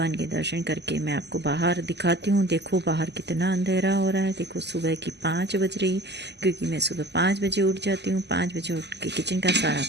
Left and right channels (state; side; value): late; left; 0.50 ms